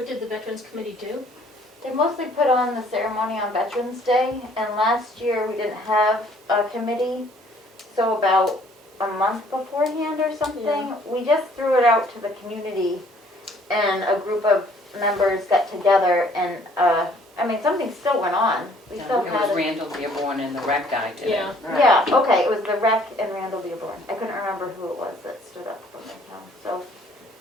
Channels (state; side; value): normal; both; correlation 0.60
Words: did the Veterans Committee do? They mostly put on the ceremony on Veterans Day, and last year we didn't have a committee, so about a month beforehand or something, Yeah. we just threw it out to the community, and a group of members got together, and, something still went on. We still It had was it. Randall Dearborn and the rec guy did it. Yeah. Yeah, okay, it was the rec and Randall Dearborn. I couldn't remember who it was that stood up from their town, so,